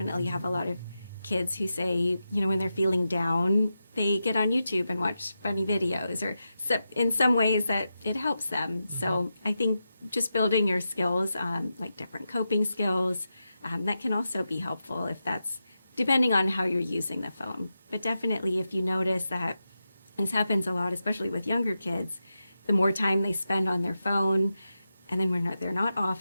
have a lot of kids who say, when they're feeling down, they get on YouTube and watch funny videos, or in some ways that it helps them. So I think just building your skills, like different coping skills, that can also be helpful if that's depending on how you're using the phone. But definitely if you notice that this happens a lot, especially with younger kids, the more time they spend on their phone, and then when they're not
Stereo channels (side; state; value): both; inverted; correlation -0.89